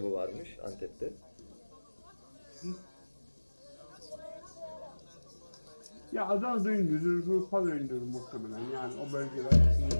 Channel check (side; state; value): both; inverted; correlation -1.00